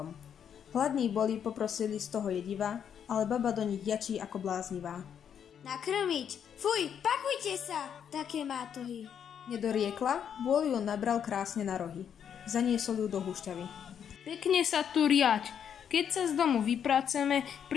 Hladní boli, poprosili z toho jediva, ale baba do nich jačí ako bláznivá. Nakrmiť! Fuj, pakujte sa! Také mátohy. Nedoriekla, vôľ ju nabral krásne na rohy. Zaniesol ju do húšťavy. Pekne sa tu riaď. Keď sa z domu vypraceme,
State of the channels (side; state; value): right; quieter; 8.3 dB